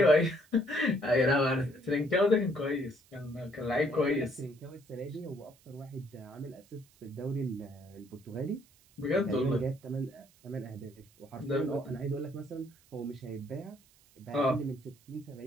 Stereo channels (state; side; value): noise; right; hiss, 29 dB below the sound